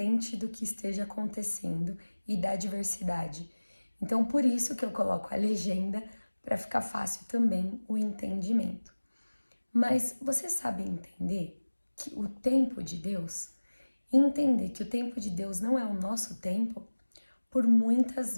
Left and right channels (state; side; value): inverted; both; correlation -1.00